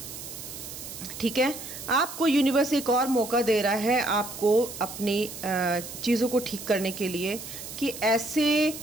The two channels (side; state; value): right; noise; hiss, 11 dB below the sound